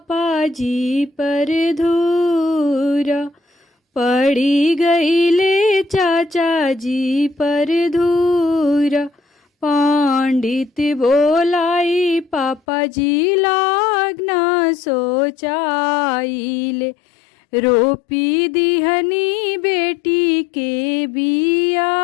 जी पर धूरा, पड़ी गईले चाचा जी पर धूरा। पंडित बोलाई पापा जी लागना सोचाइले, रोपी दिहनी बेटी के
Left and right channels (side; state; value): right; drops out; at 12.6 s